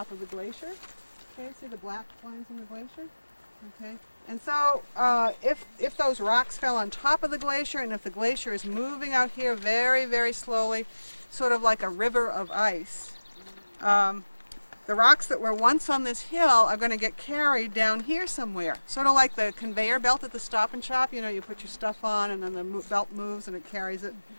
of the glacier. Okay, see the black lines in the glacier? Okay, and so if those rocks fell on top of the glacier, and if the glacier is moving out here very, very slowly, sort of like a river of ice, the rocks that were once on this hill are going to get carried down here somewhere. Sort of like the conveyor belt at the Stop and Shop. You know, you put your stuff on and then the belt moves and it carries it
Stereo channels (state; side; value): inverted; both; correlation -1.00